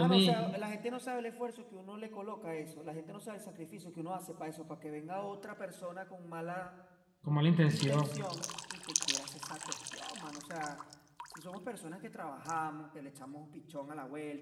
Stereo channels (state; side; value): identical; both; correlation 1.00